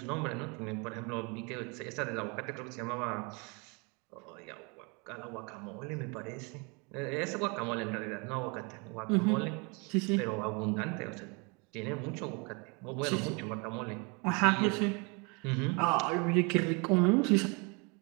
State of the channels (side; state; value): left; quieter; 31.2 dB